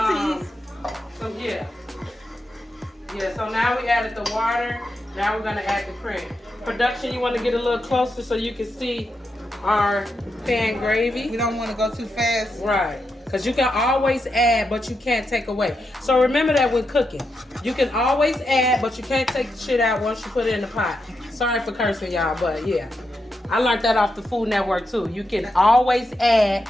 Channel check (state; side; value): normal; both; correlation 0.85